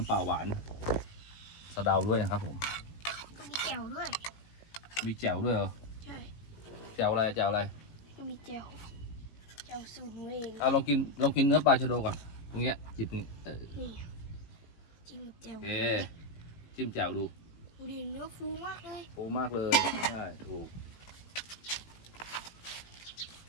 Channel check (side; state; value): right; late; 18 ms